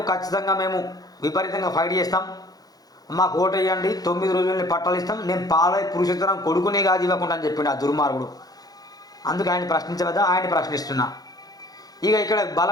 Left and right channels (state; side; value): late; right; 0.18 ms